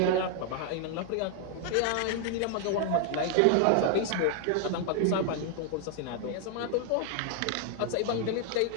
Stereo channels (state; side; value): different; both; correlation 0.00